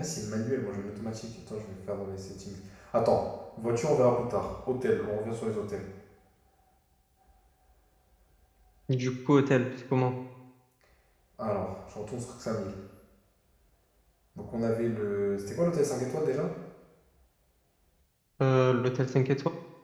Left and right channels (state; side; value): identical; both; correlation 1.00